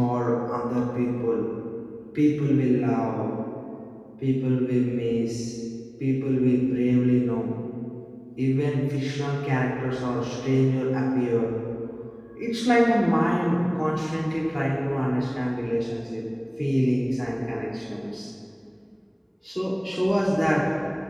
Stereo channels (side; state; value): both; identical; correlation 1.00